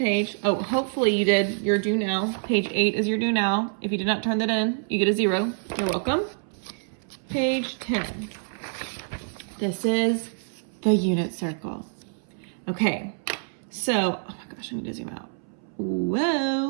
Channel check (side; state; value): left; silent; 60 dB below the other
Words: Oh, hopefully you did your do now. Page 8 is your do now. If you did not turn that in, you get a 0. You're welcome. Page 10. This is the unit circle. Okay, so, oh my gosh, I need to zoom out.